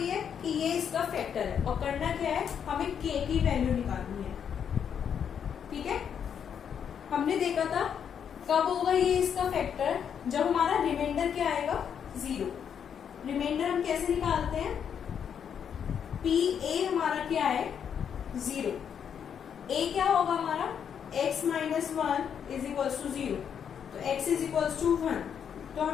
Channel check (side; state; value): right; quieter; 8.0 dB